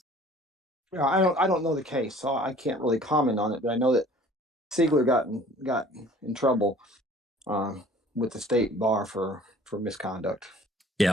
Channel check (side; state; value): both; normal; correlation 0.50